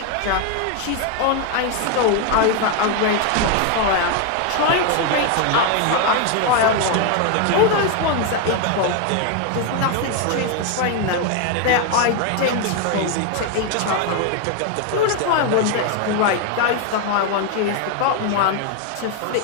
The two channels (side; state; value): both; different; correlation 0.01